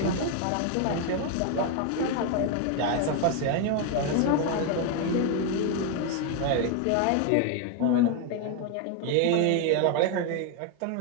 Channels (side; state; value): both; different; correlation 0.01